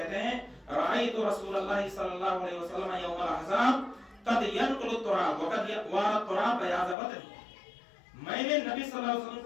ہیں رأیت رسول اللہ صلی اللہ علیہ وسلم یوم الاحزاب قد ينقل التراب وقد وارى التراب بیاض بدنه، میں نے نبی صلی اللہ علیہ وسلم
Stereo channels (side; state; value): right; drops out; at 7.0 s